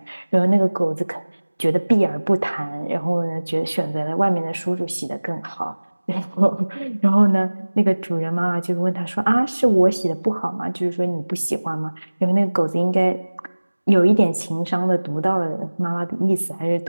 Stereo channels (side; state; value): both; inverted; correlation -1.00